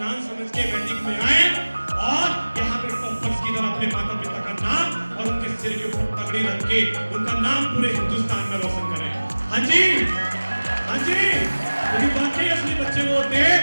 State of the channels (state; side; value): inverted; both; correlation -1.00